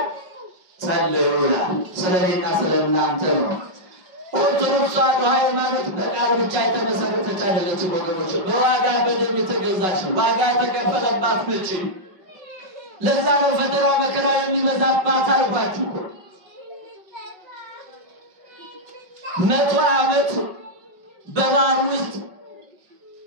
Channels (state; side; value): late; left; 5.3 ms